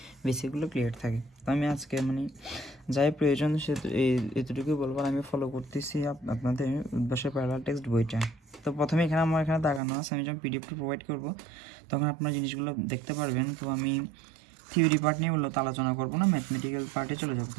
বেসিকগুলো ক্লিয়ার থাকে। তো আমি আজকে যাই প্রয়োজন সে এতটুকুই বলবো। আর আমি ফলো করতেছি আপনাদের উদ্ভাসের প্যারালাল টেক্সট বইটা। তো প্রথমে আমার এখানে দাগানো আছে, আমি যখন পিডিএফটা প্রোভাইড করব তখন আপনারা জিনিসগুলো দেখতে পারবেন। তো আমি থিওরি পার্ট নিয়ে মূলত আলোচনা করবো না, ম্যাথমেটিক্যাল পার্টে চলে যাবো।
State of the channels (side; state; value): left; drops out; at 9.8 s